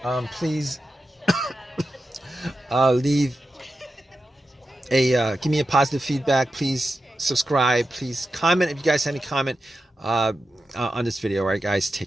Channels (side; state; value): both; normal; correlation 0.91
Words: please leave give me a positive feedback. Please subscribe. Please comment if you guys have any comment on this video. All right, guys, take